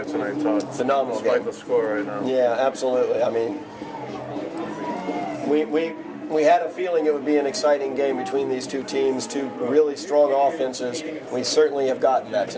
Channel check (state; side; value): identical; both; correlation 1.00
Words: tonight, Todd. Phenomenal Despite game. the score right now. Yeah, absolutely. I mean, we had a feeling it would be an exciting game between these two teams, two really strong offenses. We certainly have gotten that